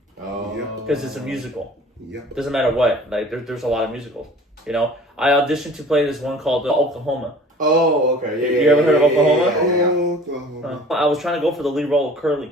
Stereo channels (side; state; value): both; normal; correlation 0.46